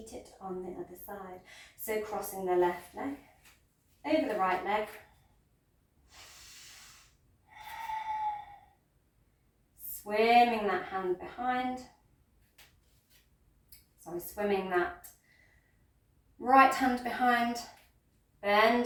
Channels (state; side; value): identical; both; correlation 1.00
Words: it on the other side. So crossing the left leg over the right leg. Swimming that hand behind. Swimming that right hand behind.